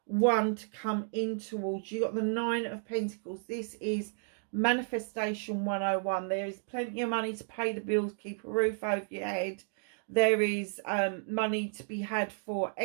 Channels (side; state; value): left; silent; digital silence